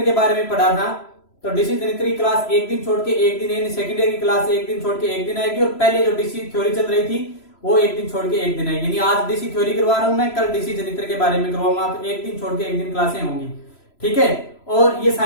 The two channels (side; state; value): right; late; 3.0 ms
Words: के बारे में पढ़ा था। तो डीसी जनित्र की क्लास एक दिन छोड़ के एक दिन, यानी सेकेंड ईयर की क्लास एक दिन छोड़ के एक दिन आएगी, और पहले जो डीसी थ्योरी चल रही थी वो एक दिन छोड़ के एक दिन आएगी। यानी आज डीसी थ्योरी करवा रहा हूं मैं, कल डीसी जनित्र के बारे में करवाऊंगा। तो एक दिन छोड़ के एक दिन क्लासें होंगी, ठीक है। और ये